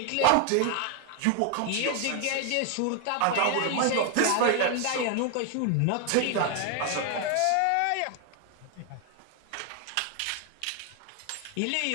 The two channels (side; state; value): both; different; correlation 0.00